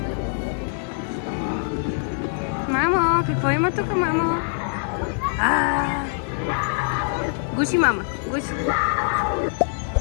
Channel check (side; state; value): right; silent; digital silence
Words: Мамо, какво има тук, мамо? Гуши, мама, гуши.